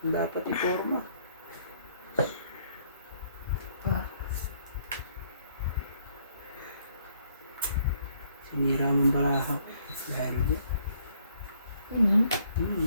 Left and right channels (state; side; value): inverted; both; correlation -0.66